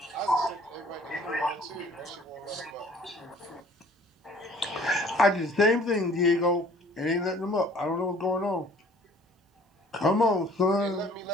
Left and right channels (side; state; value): both; normal; correlation 0.53